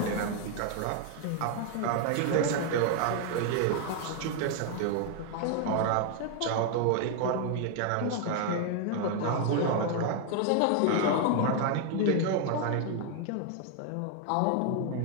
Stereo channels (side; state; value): both; different; correlation 0.00